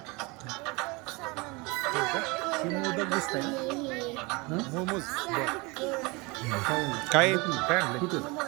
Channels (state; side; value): quieter; left; 26.4 dB